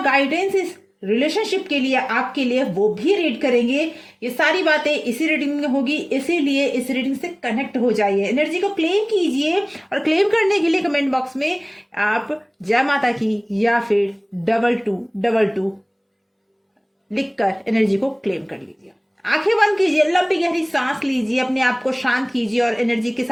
गाइडेंस इस रिलेशनशिप के लिए, आपके लिए, वो भी रीड करेंगे। ये सारी बातें इसी रीडिंग में होगी, इसीलिए इस रीडिंग से कनेक्ट हो जाइए, एनर्जी को क्लेम कीजिए। और क्लेम करने के लिए कमेंट बॉक्स में आप जय माता की या फिर 2222 लिखकर एनर्जी को क्लेम कर लीजिए। आंखें बंद कीजिए, लंबी गहरी सांस लीजिए, अपने आप को शांत कीजिए और एनर्जी के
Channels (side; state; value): both; identical; correlation 1.00